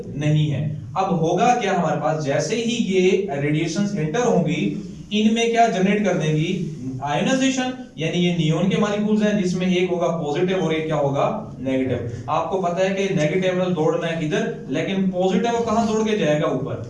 नहीं है। अब होगा क्या हमारे पास, जैसे ही ये रेडिएशंस एंटर होंगी इनमें क्या जनरेट कर देंगी, आयोनाइजेशन, यानी ये नियोन के मॉलिक्यूल्स हैं जिसमें एक होगा पॉजिटिव और एक क्या होगा, नेगेटिव। आपको पता है कि नेगेटिव दौड़ना है इधर, लेकिन पॉजिटिव कहां दौड़ के जाएगा, ऊपर।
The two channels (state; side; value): identical; both; correlation 1.00